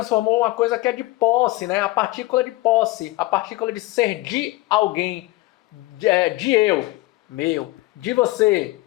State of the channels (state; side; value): quieter; right; 19.8 dB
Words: uma coisa que é de posse, né? A partícula de posse, a partícula de ser de alguém, de eu, meu, de você,